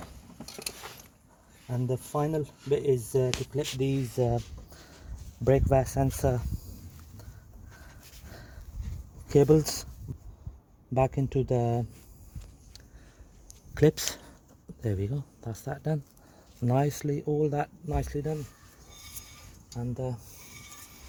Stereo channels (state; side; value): identical; both; correlation 1.00